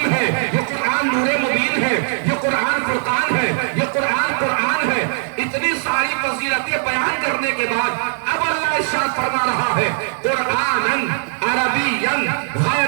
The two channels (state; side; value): silent; left; 59 dB below the other